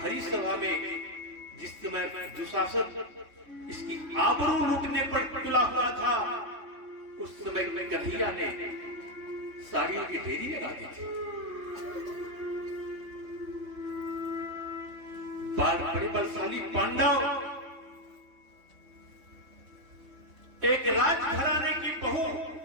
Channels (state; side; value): late; left; 3.5 ms